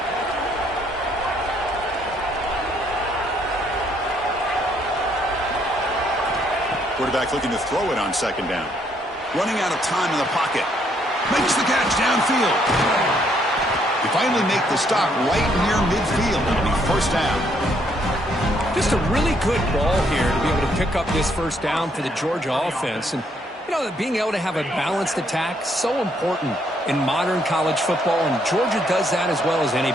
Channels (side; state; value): both; normal; correlation 0.70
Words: Quarterback looking to throw it on 2nd down. Running out of time in the pocket. Makes the catch downfield. They finally make the stop right near midfield. It'll be first down. Just a really good ball here to be able to pick up this first down for the Georgia offense. And, you know, being able to have a balanced attack, so important in modern college football, and Georgia does that as well as